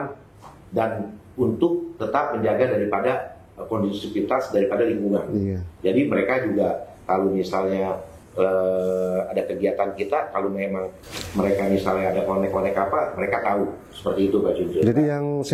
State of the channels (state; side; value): identical; both; correlation 1.00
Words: dan untuk tetap menjaga daripada kondusivitas daripada lingkungan. Jadi mereka juga kalau misalnya ada kegiatan kita, kalau memang mereka misalnya ada konek-konek apa, mereka tahu seperti itu Pak Junjun. Jadi yang